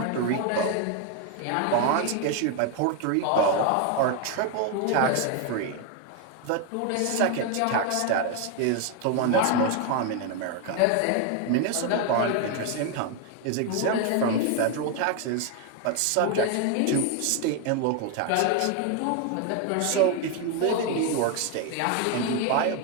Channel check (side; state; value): both; different; correlation 0.01